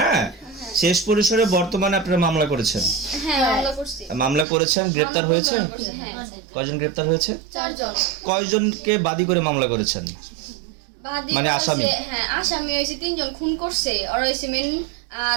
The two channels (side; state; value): left; drops out; at 4.5 s